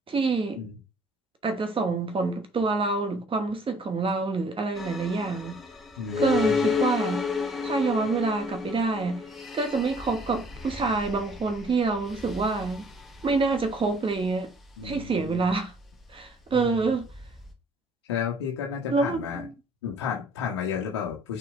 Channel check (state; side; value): normal; both; correlation 0.57